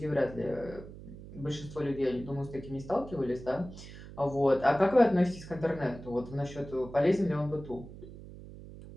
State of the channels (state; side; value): noise; right; hum, 15 dB below the sound